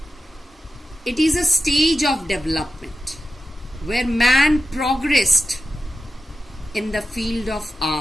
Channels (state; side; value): normal; both; correlation 0.92